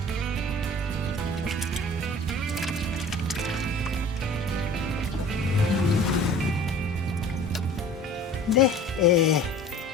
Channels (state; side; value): normal; both; correlation 0.45